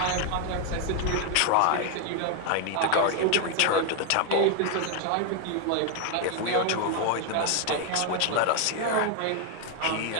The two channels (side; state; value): both; different; correlation 0.01